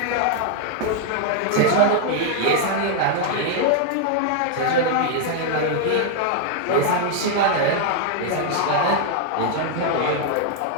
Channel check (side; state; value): both; different; correlation 0.00